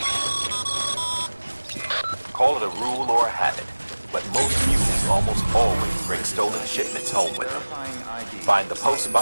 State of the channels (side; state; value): both; inverted; correlation -1.00